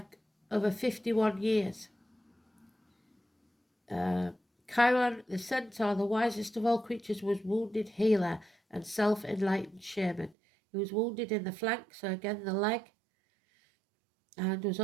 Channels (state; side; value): drops out; left; at 10.4 s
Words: over 51 years. Chiron, the centaur, the wisest of all creatures, was wounded healer and self-enlightened shaman. He was wounded in the flank, so again the leg, and was